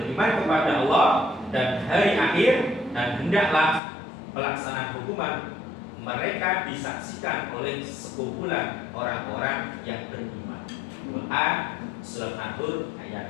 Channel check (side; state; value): right; drops out; at 3.8 s